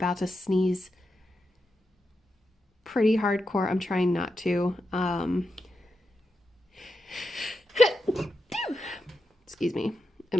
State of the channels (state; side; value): normal; both; correlation 0.87